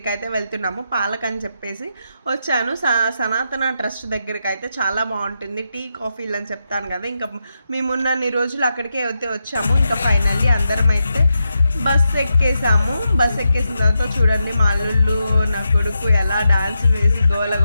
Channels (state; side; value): inverted; both; correlation -0.86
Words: అయితే వెళ్తున్నాము. పాలక్ అని చెప్పేసి వచ్చాను. సనాతన ట్రస్ట్ దగ్గరికి అయితే చాలా బాగుంటుంది. టీ కాఫీలు అని చెప్తాను కదా, ఇంకా మేమున్నన్ని రోజులు అక్కడికే అయితే వచ్చాము. ఇంకా ఫైనల్లీ అందరం అయితే బస్ ఎక్కేసాము. బస్ ఎక్కేసిన తర్వాత చూడండి మా అల్లుళ్ళు నా కొడుకు ఎలా డాన్స్ వేసి గోల